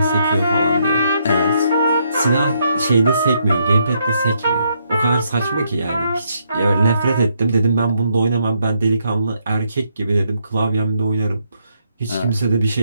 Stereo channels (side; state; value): both; inverted; correlation -0.75